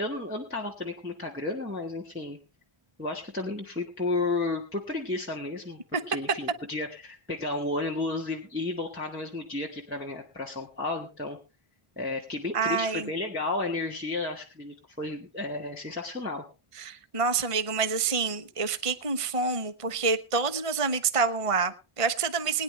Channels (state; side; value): late; left; 1.5 ms